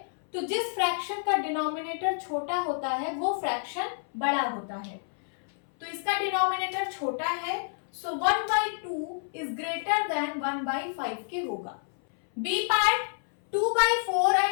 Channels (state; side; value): silent; right; 59 dB below the other